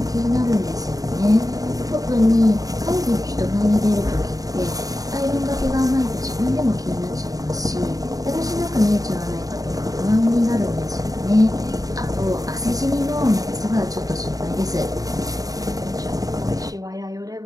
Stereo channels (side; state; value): left; late; 0.17 ms